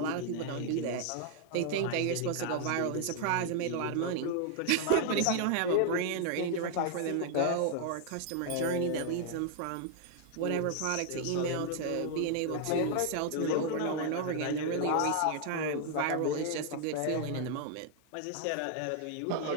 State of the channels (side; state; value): both; different; correlation 0.00